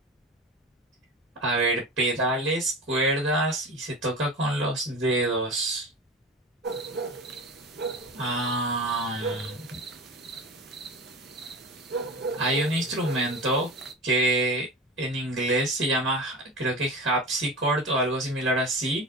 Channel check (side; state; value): both; normal; correlation 0.30